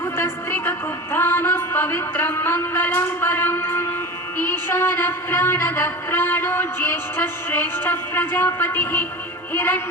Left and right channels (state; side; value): normal; both; correlation 0.30